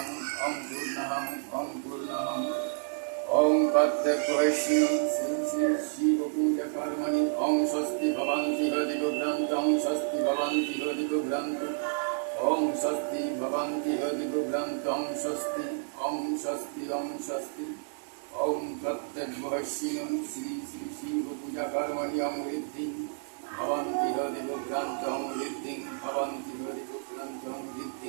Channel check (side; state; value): left; silent; digital silence